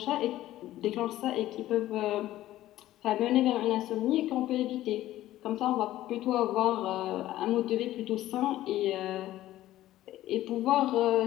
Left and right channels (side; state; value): right; quieter; 14.5 dB